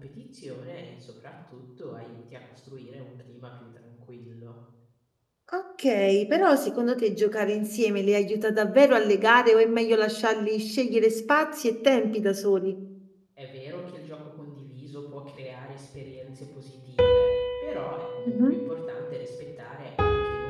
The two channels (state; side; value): identical; both; correlation 1.00